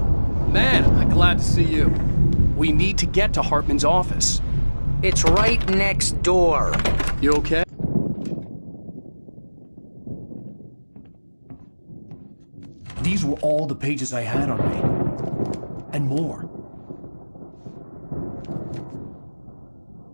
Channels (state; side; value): inverted; both; correlation -1.00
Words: man, I'm glad to see you. We need to get to Hartman's office. It's right next door. You okay? These were all the pages I had on me. And more.